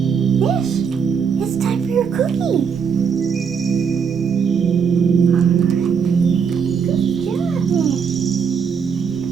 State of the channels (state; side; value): quieter; left; 6.6 dB